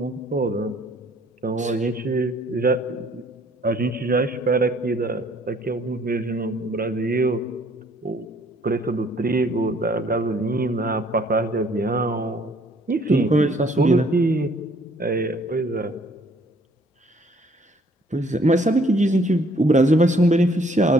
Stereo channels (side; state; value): both; normal; correlation 0.61